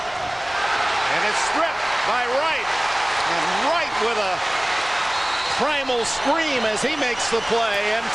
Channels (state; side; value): noise; left; hum, 23 dB below the sound